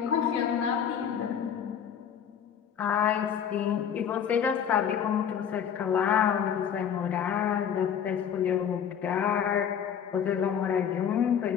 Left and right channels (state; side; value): quieter; right; 8.3 dB